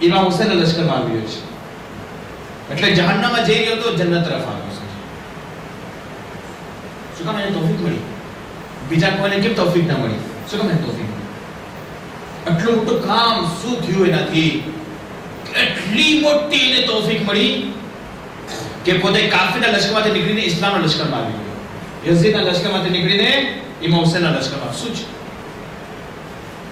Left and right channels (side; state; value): both; identical; correlation 1.00